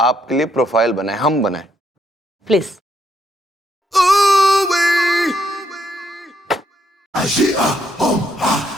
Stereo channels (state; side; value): normal; both; correlation 0.74